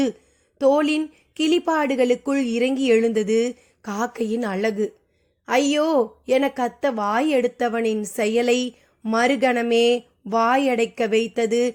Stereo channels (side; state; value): both; identical; correlation 1.00